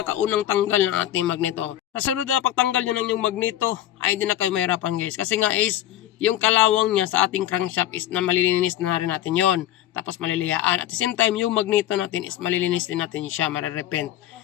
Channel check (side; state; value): right; quieter; 12.8 dB